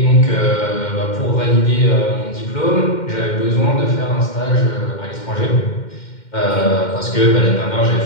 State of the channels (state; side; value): late; right; 2.1 ms